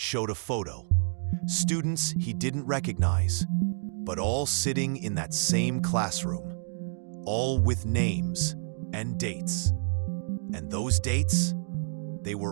a photo. Students he didn't recognize, but all sitting in that same classroom, all with names and dates. And those dates? They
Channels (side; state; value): left; silent; digital silence